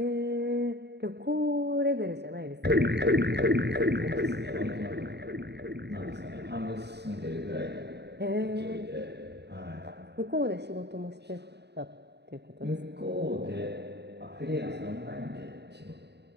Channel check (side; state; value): left; late; 0.49 ms